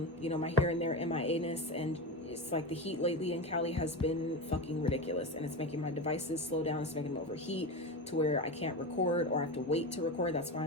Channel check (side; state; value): both; normal; correlation 0.21